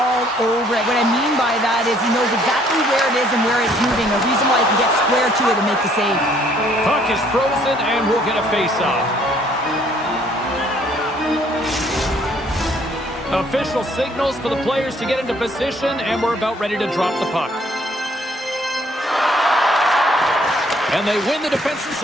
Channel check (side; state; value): both; normal; correlation 0.63